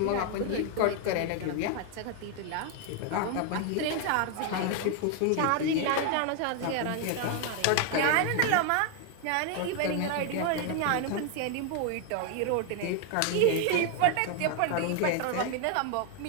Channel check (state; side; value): different; both; correlation 0.01